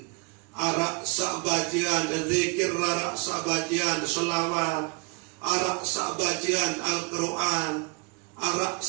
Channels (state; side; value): quieter; left; 31.3 dB